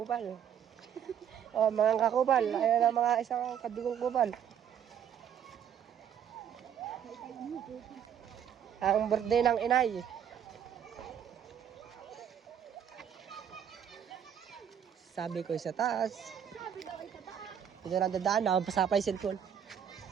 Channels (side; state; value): left; quieter; 8.9 dB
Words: Oh, mga kakupal. Ayan ang mga isang kadugong kupal. Ang birthday ng inay. Sabi ko sa taas. Ito na dadaan, nakapasa pa yung cellphone.